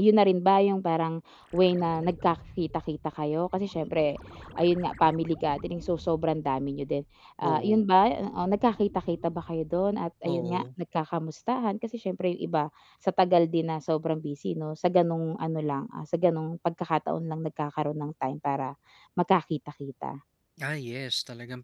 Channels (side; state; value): both; identical; correlation 1.00